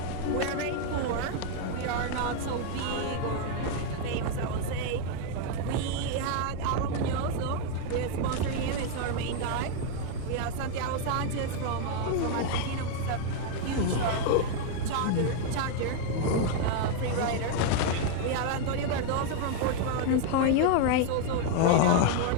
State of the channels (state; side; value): different; both; correlation 0.00